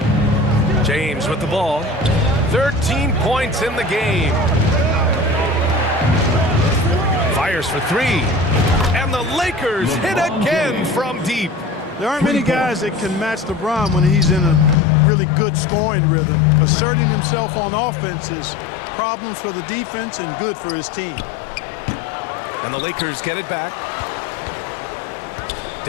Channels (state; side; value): drops out; right; at 14.8 s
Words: James with the ball. 13 points in the game. Fires for 3. And the Lakers hit again from deep. There aren't many guys that can match LeBron when he's in a really good scoring rhythm. Asserting himself on offense is problems for the defense and good for his team. And the Lakers get it back.